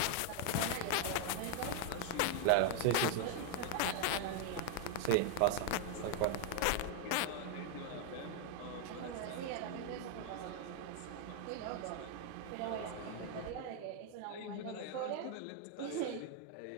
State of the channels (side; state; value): both; different; correlation 0.00